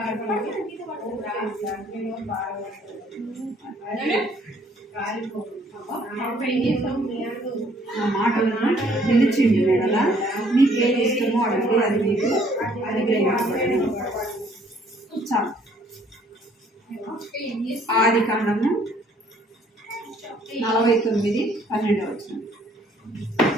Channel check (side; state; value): both; normal; correlation 0.62